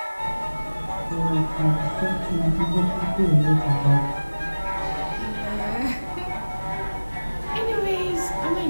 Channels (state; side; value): inverted; both; correlation -1.00